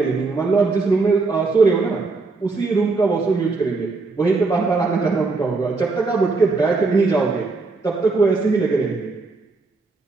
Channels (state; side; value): quieter; left; 3.9 dB